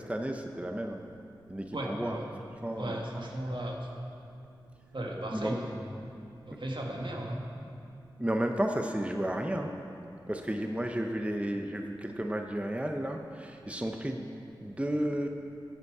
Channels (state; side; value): noise; right; rumble, 26 dB below the sound